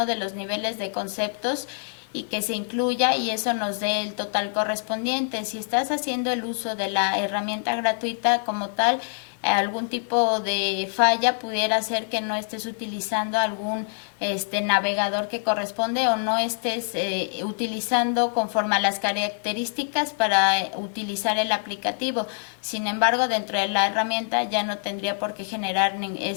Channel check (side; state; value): right; silent; 58 dB below the other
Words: de los niveles de conceptos y que se incluya y eso nos dé el total correspondiente. Si estás haciendo el uso de la herramienta gratuita como tal, algún tipo de falla pudiera ser que no estés utilizando algún navegador que corresponde o no estés utilizando conforme a las características para utilizar el aplicativo. Sin embargo, dentro de la herramienta ya no tendría por qué generar